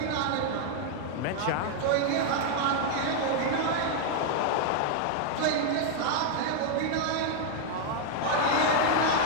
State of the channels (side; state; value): both; different; correlation 0.00